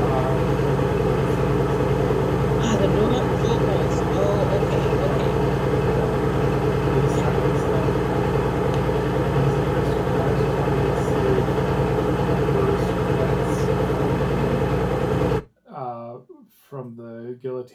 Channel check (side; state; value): both; identical; correlation 1.00